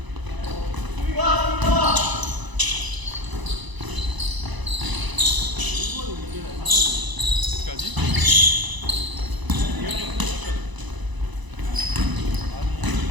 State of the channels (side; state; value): left; late; 1.0 ms